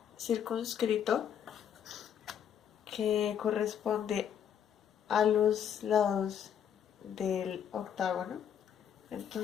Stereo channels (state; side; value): quieter; right; 8.7 dB